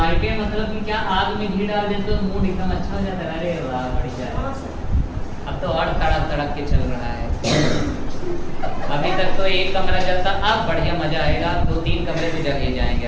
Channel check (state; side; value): identical; both; correlation 1.00